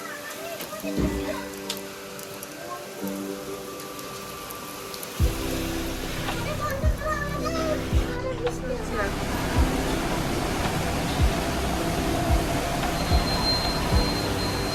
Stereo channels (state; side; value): identical; both; correlation 1.00